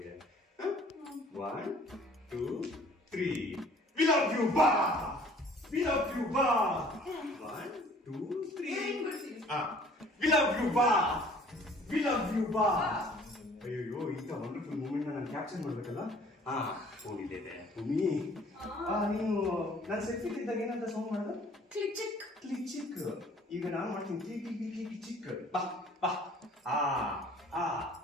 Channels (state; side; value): normal; both; correlation 0.54